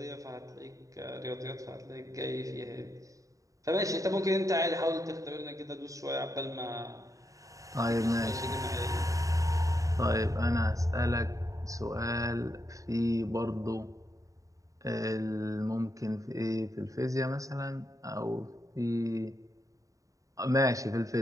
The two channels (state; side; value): late; left; 0.16 ms